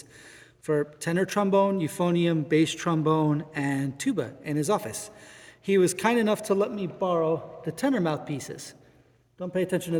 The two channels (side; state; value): both; identical; correlation 1.00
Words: for tenor trombone, euphonium, bass trombone, and tuba in his office. He was kind enough to let me borrow the tenor mouthpieces. Don't pay attention to